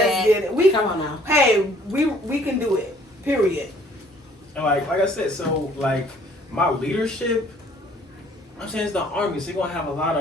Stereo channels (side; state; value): both; normal; correlation 0.58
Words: dad. get it. We Come on now. hey, we can do it. Period. And like I said, so like my leadership, I'm saying it's the army, so you're gonna have a lot